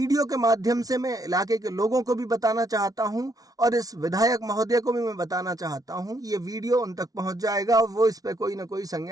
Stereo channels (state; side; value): late; left; 0.18 ms